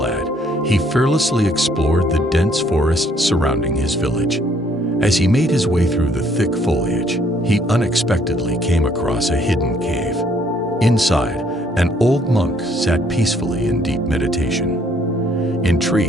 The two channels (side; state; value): both; normal; correlation 0.65